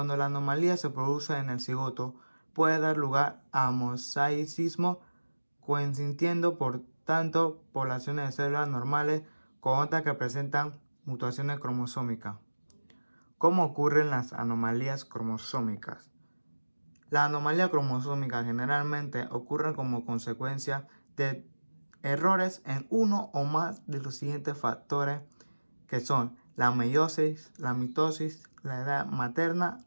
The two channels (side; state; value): both; inverted; correlation -1.00